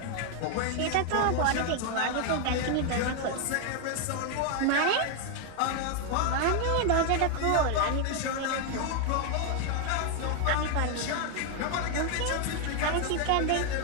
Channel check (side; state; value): both; different; correlation 0.00